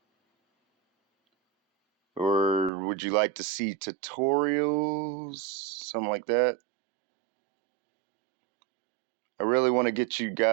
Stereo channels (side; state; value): left; drops out; at 2.7 s